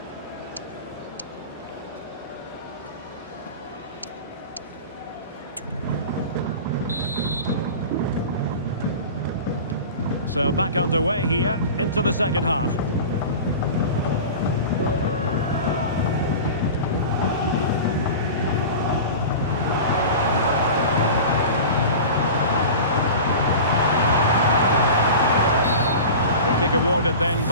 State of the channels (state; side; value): inverted; both; correlation -0.33